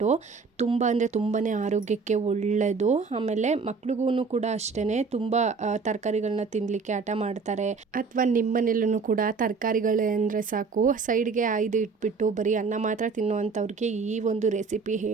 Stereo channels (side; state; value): left; quieter; 4.8 dB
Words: ತುಂಬ ಅಂದರೆ ತುಂಬಾ ಆರೋಗ್ಯಕ್ಕೆ ಒಳ್ಳೆಯದು. ಆಮೇಲೆ ಮಕ್ಳಿಗೂ ಕೂಡ ಅಷ್ಟೇ ತುಂಬ ತರಕಾರಿಗಳನ್ನ ತಿನ್ನಲಿಕ್ಕೆ ಹಠ ಮಾಡ್ತಾರೆ. ಅಥವಾ ನಿಮ್ಮ ಮನೇಲೂ ಕೂಡ ತರಕಾರಿಗಳು ಅಂದರೆ ಸಾಕು ಸೈಡ್ಗೆ ಆಯ್ದು ಇಟ್ಬಿಟ್ಟು ಬರೀ ಅನ್ನ ಮಾತ್ರ ತಿನ್ನುವಂಥವ್ರಿಗೆ ಈ ಒಂದು ರೆಸಿಪಿ